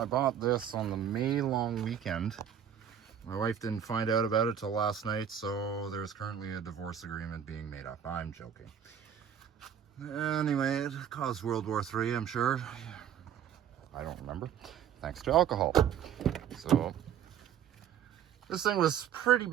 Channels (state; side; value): quieter; left; 8.9 dB